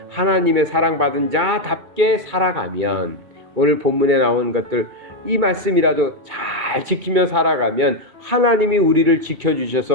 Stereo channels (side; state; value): left; late; 2.3 ms